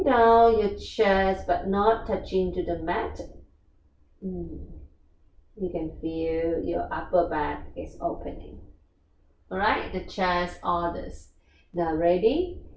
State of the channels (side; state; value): both; identical; correlation 1.00